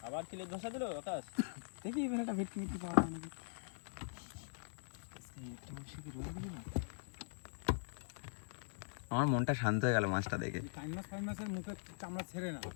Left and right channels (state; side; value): silent; right; digital silence